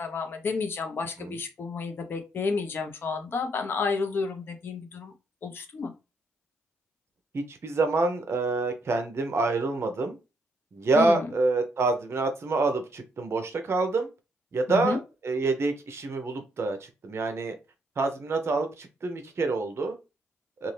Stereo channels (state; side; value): normal; both; correlation 0.74